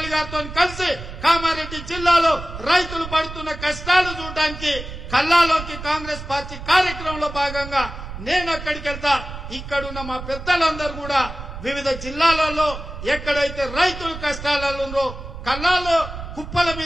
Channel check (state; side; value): noise; right; rumble, 10 dB below the sound